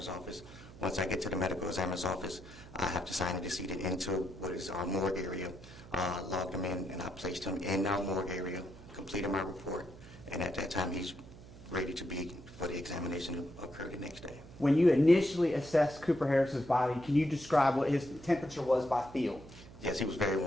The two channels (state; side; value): noise; right; hum, 18 dB below the sound